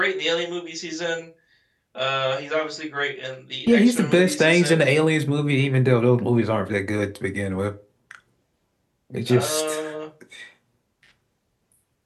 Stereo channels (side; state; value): both; identical; correlation 1.00